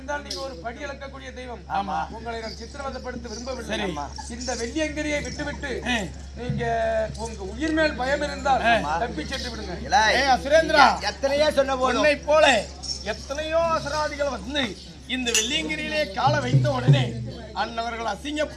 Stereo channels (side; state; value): both; identical; correlation 1.00